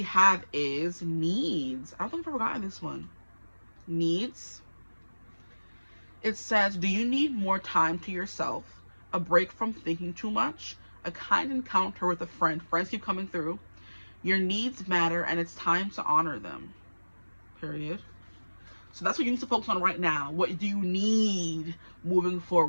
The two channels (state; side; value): inverted; both; correlation -1.00